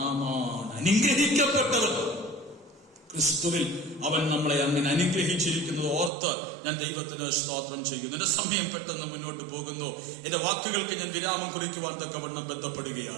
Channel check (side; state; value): left; drops out; at 6.1 s